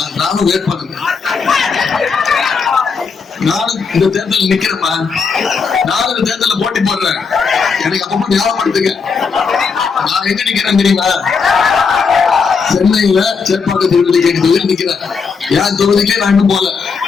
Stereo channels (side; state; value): right; quieter; 5.4 dB